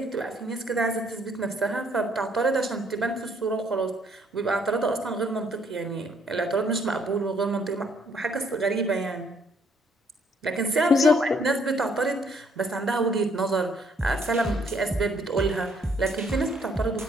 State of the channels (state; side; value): normal; both; correlation 0.66